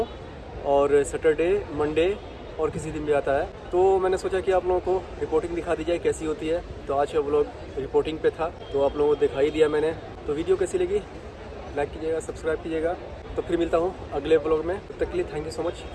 और सैटरडे, मंडे और किसी दिन भी आता है। तो मैंने सोचा कि आप लोगों को रिपोर्टिंग दिखा दी जाए कैसी होती है। तो आज का व्लॉग रिपोर्टिंग पे था, तो आप लोगों को दिखाई दिया मैंने। तो वीडियो कैसी लगी लाइक कीजिएगा, सब्सक्राइब कीजिएगा। तो फिर मिलता हूँ अगले व्लॉग में, तब तक के लिए thank you so much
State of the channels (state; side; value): identical; both; correlation 1.00